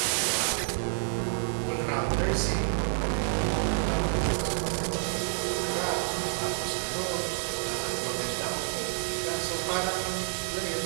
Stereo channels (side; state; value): left; silent; digital silence